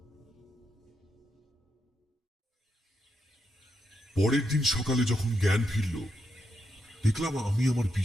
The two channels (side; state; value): both; normal; correlation 0.82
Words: পরের দিন সকালে যখন জ্ঞান ফিরল, দেখলাম আমি আমার